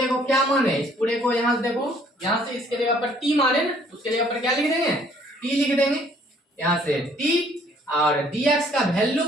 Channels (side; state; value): both; normal; correlation 0.61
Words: को क्या माने, इस पूरे को यहाँ से देखो, यहाँ से इसके जगह पर t माने ना, उसके जगह पर क्या लिख देंगे, t लिख देंगे। यहाँ से t और dx का वैल्यू